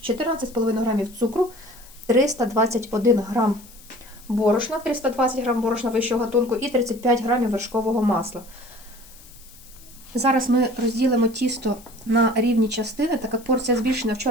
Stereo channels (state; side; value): noise; left; hiss, 22 dB below the sound